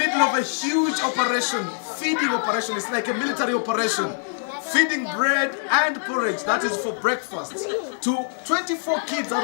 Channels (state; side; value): silent; right; digital silence